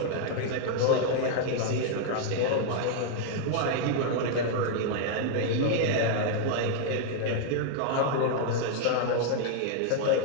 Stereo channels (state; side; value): different; both; correlation 0.00